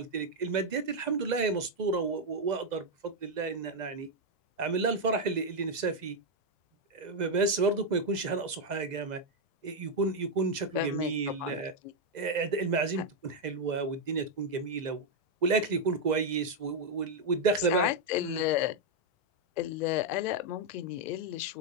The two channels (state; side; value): late; left; 2.0 ms